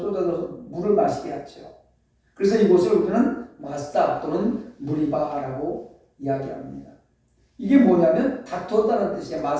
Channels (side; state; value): both; identical; correlation 1.00